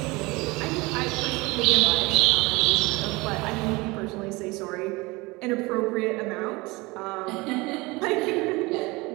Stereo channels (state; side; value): quieter; left; 23.5 dB